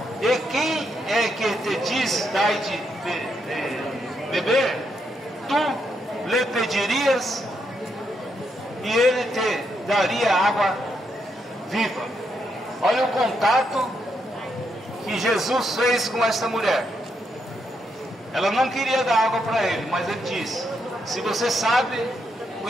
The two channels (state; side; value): normal; both; correlation 0.79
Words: e quem é que te diz dai de beber, tu lhe pedirias e ele te daria água viva. Olha o contato que Jesus fez com esta mulher. Ela não queria dar água para ele, mas ele disse: se você sabe,